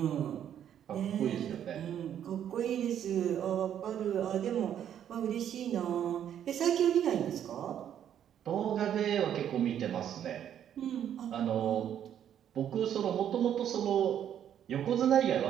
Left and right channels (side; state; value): left; quieter; 9.8 dB